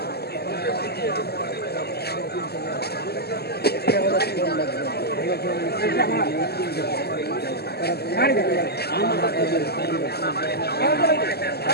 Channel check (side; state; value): right; late; 0.47 ms